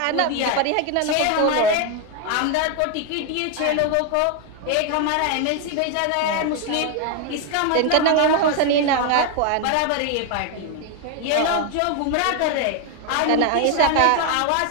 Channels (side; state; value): both; different; correlation 0.01